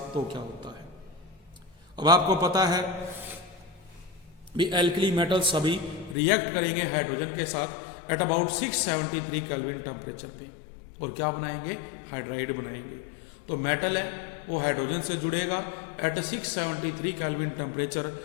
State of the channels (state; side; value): drops out; right; at 6.2 s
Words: तो क्या होता है। अब आपको पता है भी एल्कली मेटल्स सभी रिएक्ट करेंगे हाइड्रोजन के साथ एट अबाउट 673 केल्विन टेम्परेचर पे, और क्या बनाएंगे, हाइड्राइड बनाएंगे। तो मेटल है वो हाइड्रोजन से जुड़ेगा एट 673 केल्विन टेम्परेचर,